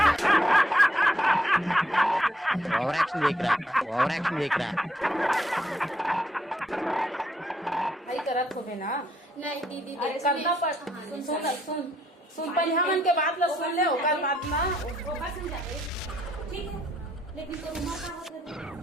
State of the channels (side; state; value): both; normal; correlation 0.73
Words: ओवर एक्शन देख रहा है। भाई करत होबे ना। नहीं दीदी अरे करना पड़। सुन पहले हमन के बात ला सुन ले, ओकर बात ना ओकर समझा दे। ठीक है, लेकिन तो उमा का होत है